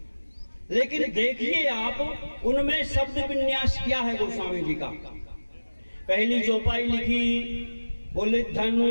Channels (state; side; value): inverted; both; correlation -1.00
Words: लेकिन देखिए आप उनमें शब्द विन्यास क्या है गोस्वामी जी का। पहली चौपाई लिखी, बोले